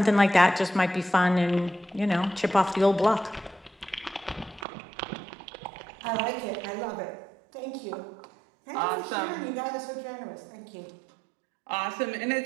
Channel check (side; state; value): left; drops out; at 4.7 s